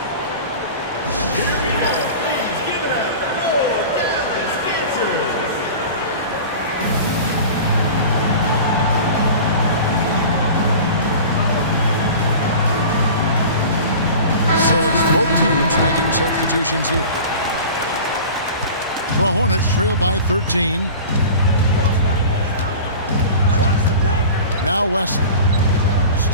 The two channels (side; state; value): both; inverted; correlation -0.37